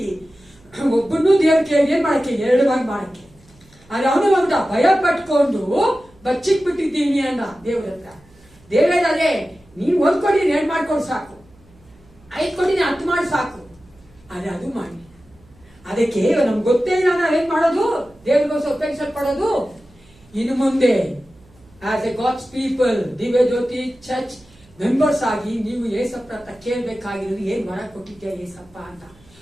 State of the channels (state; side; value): noise; right; hum, 28 dB below the sound